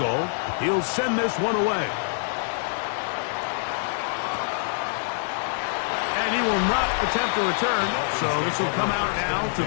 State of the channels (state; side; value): silent; right; 62 dB below the other